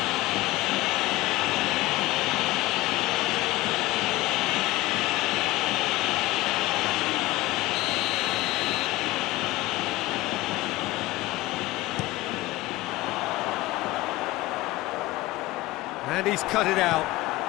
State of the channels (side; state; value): right; quieter; 18.8 dB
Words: And he's cut it out.